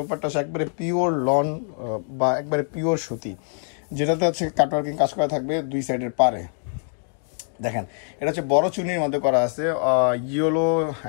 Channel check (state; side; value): silent; right; 55 dB below the other